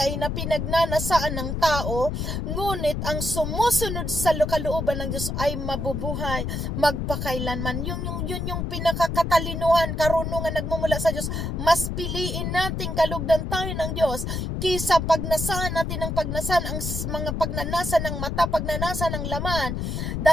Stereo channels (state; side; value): noise; left; rumble, 3 dB below the sound